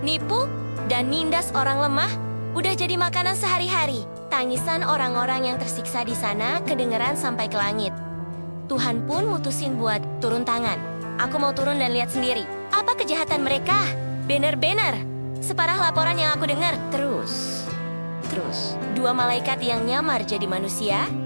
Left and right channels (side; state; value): both; inverted; correlation -1.00